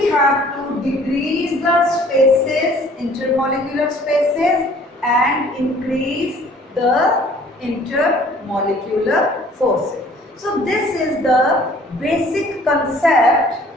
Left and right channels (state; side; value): normal; both; correlation 0.54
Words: have to decrease the spaces, intermolecular spaces, and increase the intermolecular forces. So this is the basic concept